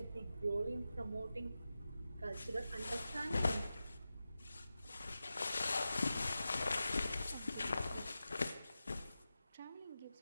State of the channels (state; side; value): inverted; both; correlation -0.93